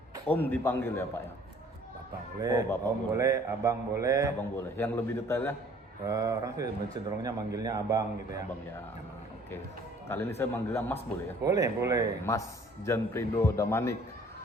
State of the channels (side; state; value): both; normal; correlation 0.55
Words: Om dipanggil ya Pak ya? Bapak boleh, Oh, Bapak Om boleh. boleh, Abang boleh. Abang boleh. Yang lebih detailnya? Orang sih cenderungnya manggilnya Abang gitu ya. Abang ya. Oke. Kali ini saya manggilnya Mas boleh ya? Boleh, boleh. Mas Janprido Damanik.